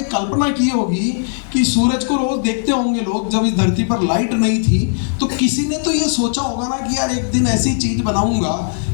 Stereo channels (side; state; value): right; silent; digital silence